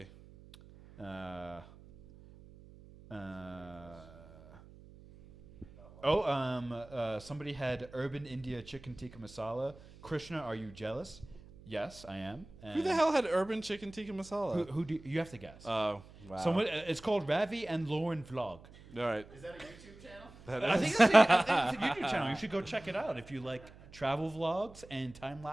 Somebody had Urban India Chicken Tikka Masala. Krishna, are you jealous? Yes, I am. Who the hell had urban chicken tikka masala? Who do you have to guess? Oh, wow. Someone. It's called Ravi and Lauren Vlog. All right. Is that a YouTube channel? I think it's a YouTube channel. You should go check it out if you like travel vlogs and time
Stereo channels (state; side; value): noise; right; hum, 20 dB below the sound